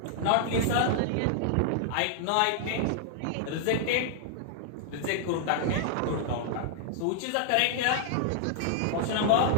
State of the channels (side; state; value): both; different; correlation -0.01